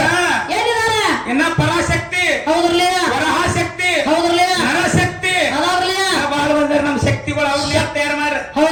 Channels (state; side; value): identical; both; correlation 1.00